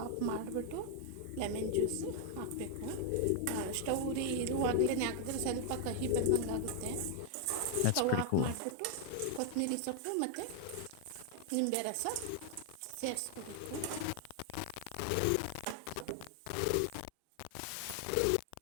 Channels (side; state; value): both; different; correlation 0.00